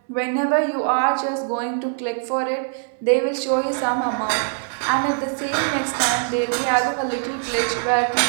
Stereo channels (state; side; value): silent; left; 64 dB below the other